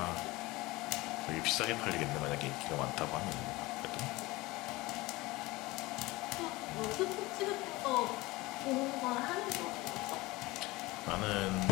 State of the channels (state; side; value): quieter; right; 21.0 dB